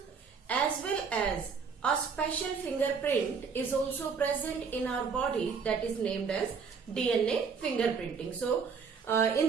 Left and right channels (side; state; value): left; quieter; 5.7 dB